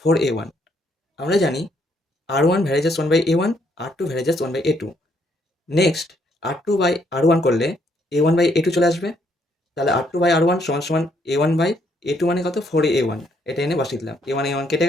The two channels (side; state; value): both; normal; correlation 0.71